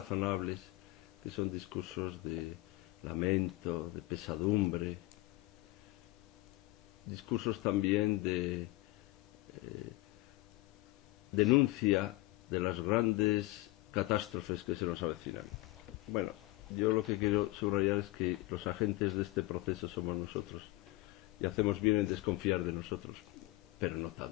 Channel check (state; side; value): quieter; right; 19.7 dB